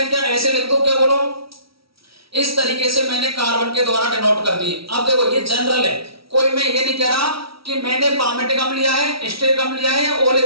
क्या ऐसे लिख दूं, क्या बोलो, इस तरीके से मैंने कार्बन के द्वारा डिनोट कर दी। अब देखो, ये जनरल है, कोई मैं ये नहीं कह रहा कि मैंने पामेटिक अम्ल लिया है, स्टेरिक अम्ल लिया है या ओलिक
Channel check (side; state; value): left; late; 0.75 ms